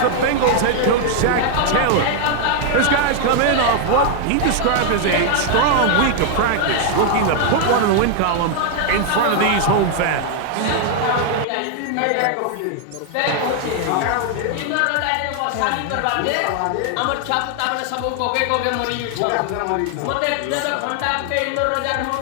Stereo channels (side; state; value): both; different; correlation 0.00